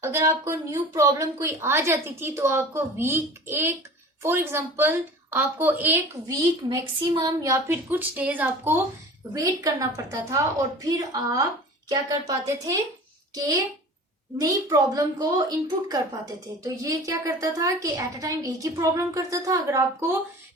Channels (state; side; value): normal; both; correlation 0.40